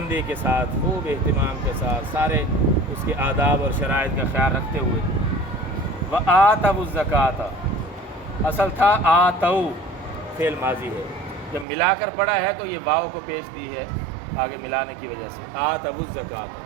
کے ساتھ، خوب اہتمام کے ساتھ، سارے اس کے آداب اور شرائط کا خیال رکھتے ہوئے۔ وآتوا الزکوٰۃ، اصل تھا آتوا، فعل ماضی ہے، جب ملا کر پڑھا ہے تو یہ واو کو پیش دی ہے آگے ملانے کی وجہ سے، آتوا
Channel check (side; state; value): left; drops out; at 11.7 s